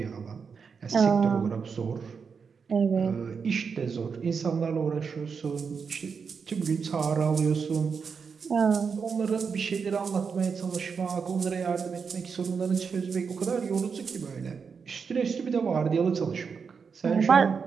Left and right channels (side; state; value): left; quieter; 5.8 dB